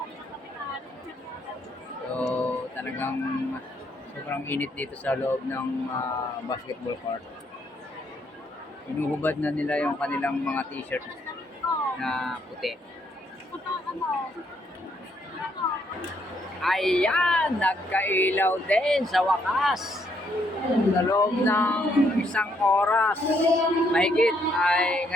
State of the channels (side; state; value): both; normal; correlation 0.72